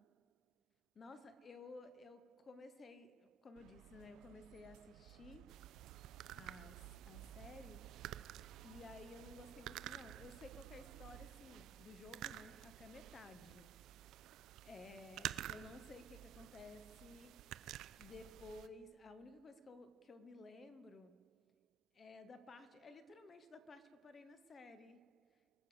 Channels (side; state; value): left; quieter; 4.9 dB